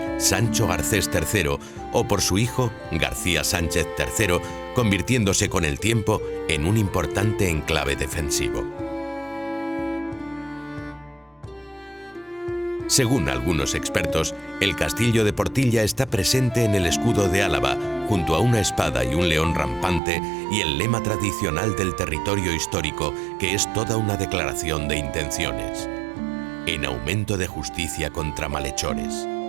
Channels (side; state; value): left; drops out; at 20.0 s